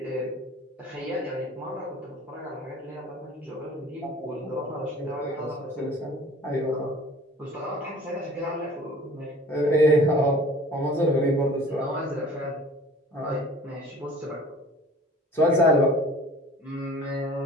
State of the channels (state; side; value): normal; both; correlation 0.47